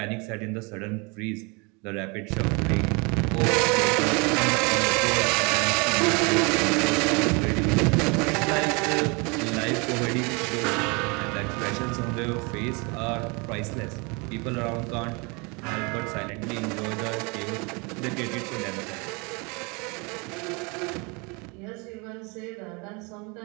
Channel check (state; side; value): quieter; left; 29.6 dB